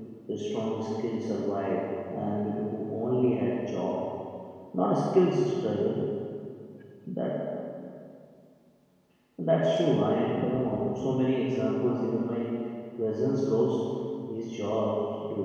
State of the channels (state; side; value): identical; both; correlation 1.00